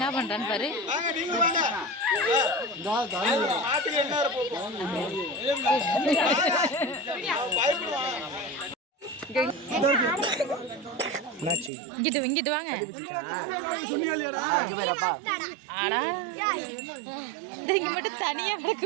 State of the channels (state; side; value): drops out; left; at 11.7 s